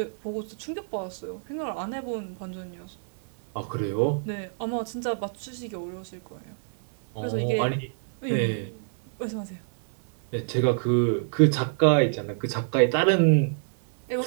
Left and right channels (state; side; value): silent; left; 60 dB below the other